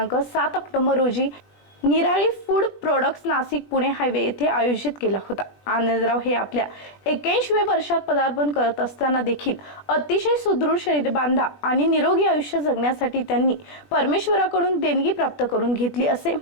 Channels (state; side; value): late; right; 20 ms